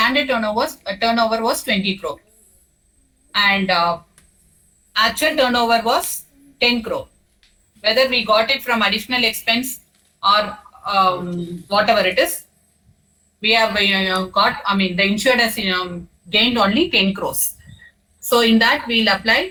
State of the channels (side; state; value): both; identical; correlation 1.00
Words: turnover was 20 crore. And actual turnover was 10 crore. Whether we got it from additional expense or whatever it is, we have got, the insured has gained only 10 crores. So in that, we'll